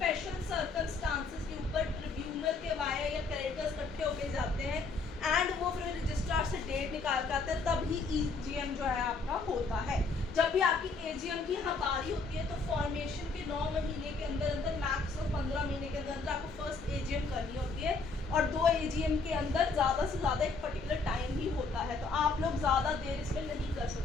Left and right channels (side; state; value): right; quieter; 4.1 dB